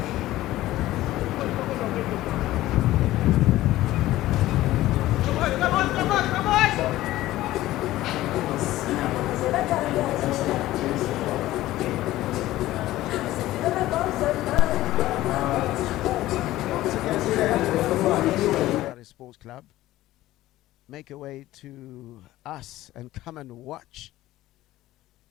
Sports Club, make your way to us and come and watch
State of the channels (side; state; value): right; quieter; 15.8 dB